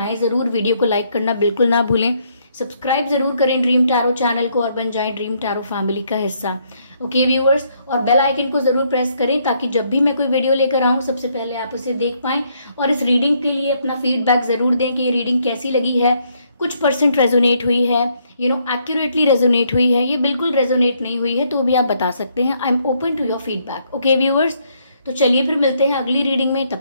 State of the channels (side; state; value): both; inverted; correlation -0.71